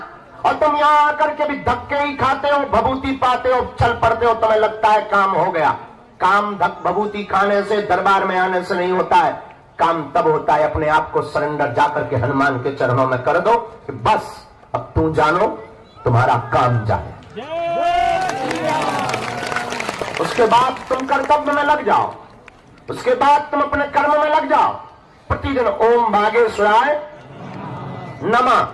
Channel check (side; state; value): both; identical; correlation 1.00